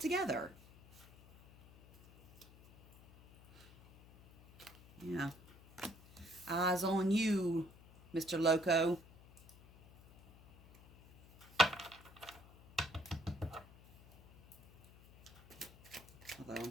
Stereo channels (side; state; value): left; noise; hum, 23 dB below the sound